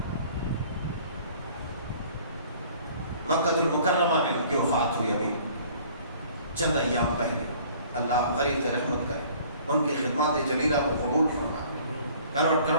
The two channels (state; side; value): inverted; both; correlation -0.53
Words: مکہ المکرمہ میں ان کی وفات ہوئی ابھی چند ایام پہلے. اللہ غریب رحمت کرے، ان کی خدمات جلیلہ کو قبول فرمائے، کروڑ